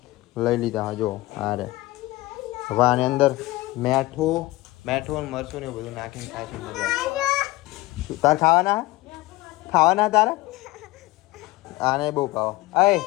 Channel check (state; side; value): quieter; right; 19.2 dB